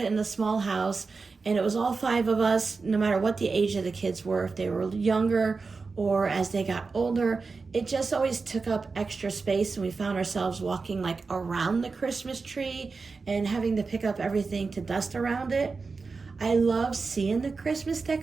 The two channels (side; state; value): left; quieter; 4.4 dB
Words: in the small house and it was all 5 of us, no matter what the age of the kids were, if they were younger or as they got older, it just always took up extra space, and we found ourselves walking like around the Christmas tree and having to pick up everything to dust around it. I love seeing the Christmas